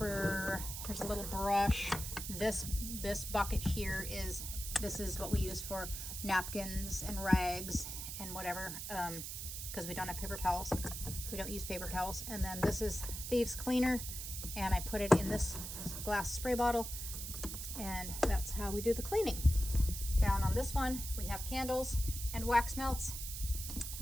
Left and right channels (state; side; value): noise; right; hiss, 6 dB below the sound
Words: here's a little brush. This bucket here is what we use for napkins and rags and whatever, because we don't have paper towels. We don't use paper towels. And then this is thieves cleaner, and I put it in this glass spray bottle, and that's how we do the cleaning. Down on this one we have candles and wax melts,